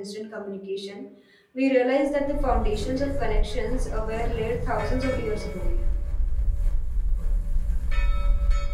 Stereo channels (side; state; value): both; identical; correlation 1.00